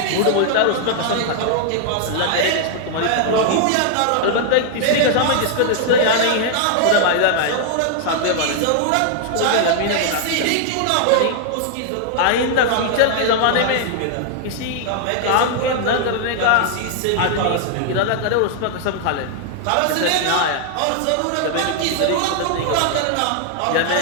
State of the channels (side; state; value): both; different; correlation 0.00